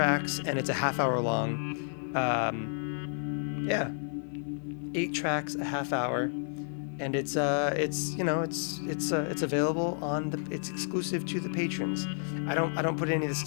and it's a half hour long. 8 tracks, a half hour, and it's available it's exclusive to the patrons. I don't put any of this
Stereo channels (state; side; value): silent; right; 57 dB below the other